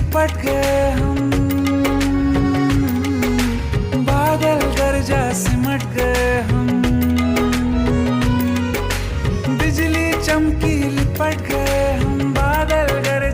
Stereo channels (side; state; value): both; identical; correlation 1.00